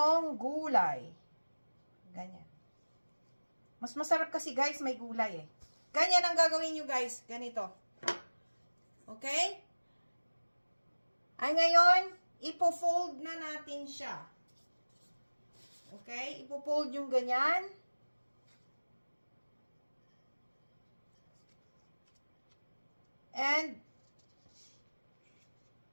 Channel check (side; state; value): both; inverted; correlation -1.00